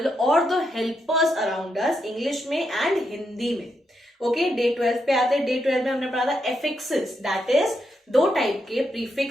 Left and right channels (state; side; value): normal; both; correlation 0.82